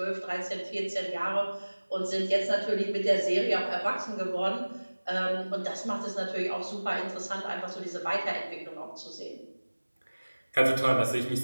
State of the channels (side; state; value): both; inverted; correlation -1.00